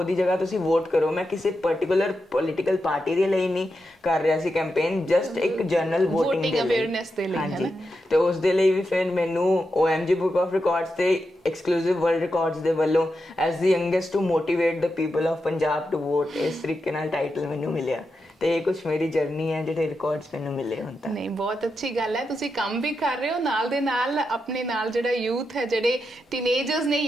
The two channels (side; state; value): both; normal; correlation 0.87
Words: ਜਗ੍ਹਾ ਤੁਸੀਂ ਵੋਟ ਕਰੋ। ਮੈਂ ਕਿਸੇ ਪਰਟੀਕੁਲਰ ਪੋਲੀਟੀਕਲ ਪਾਰਟੀ ਦੇ ਲਈ ਨਹੀਂ ਕਰ ਰਿਹਾ ਸੀ ਕੈਂਪੇਨ, ਜਸਟ ਇੱਕ ਜਨਰਲ VOTING ਅਵੇਅਰਨੈਸ ਦੇ ਲਈ। ਹਾਂਜੀ। ਤੇ ਉਸ ਦੇ ਲਈ ਵੀ ਫਿਰ ਮੈਨੂੰ OMG ਬੁੱਕ ਆਫ ਰਿਕਾਰਡਸ ਤੇ ਐਕਸਕਲੂਸਿਵ ਵਰਲਡ ਰਿਕਾਰਡਸ ਦੇ ਵੱਲੋਂ as the youngest to motivate the people of Punjab to vote ਇਸ ਤਰੀਕੇ ਨਾਲ ਟਾਈਟਲ ਮੈਨੂੰ ਮਿਲਿਆ। ਤੇ ਇਹ ਕੁਝ ਮੇਰੀ ਜਰਨੀ ਹੈ ਜਿਹੜੇ ਰਿਕਾਰਡਸ ਮੈਨੂੰ ਮਿਲੇ ਹੁਣ ਤੱਕ। ਨਹੀਂ, ਬਹੁਤ ਅੱਛੀ ਗੱਲ ਹੈ, ਤੁਸੀਂ ਕੰਮ ਵੀ ਕਰ ਰਹੇ ਹੋ ਨਾਲ ਦੇ ਨਾਲ ਆਪਣੇ ਨਾਲ ਜਿਹੜਾ ਯੂਥ ਹੈ, ਜਿਹੜੇ ਟੀਨੇਜਰਸ ਨੇ,